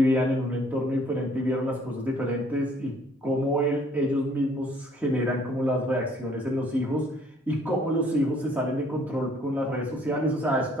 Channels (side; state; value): both; normal; correlation 0.60